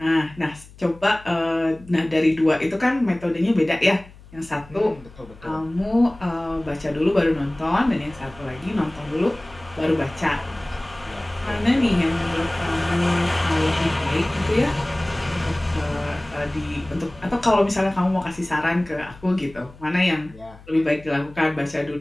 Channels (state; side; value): noise; left; hum, 21 dB below the sound